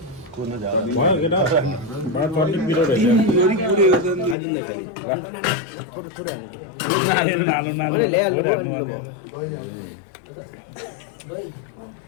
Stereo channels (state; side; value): drops out; right; at 4.4 s